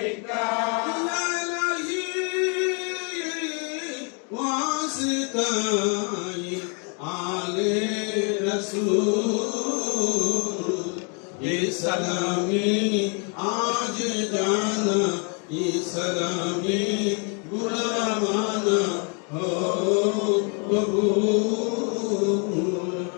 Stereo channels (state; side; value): quieter; right; 37.5 dB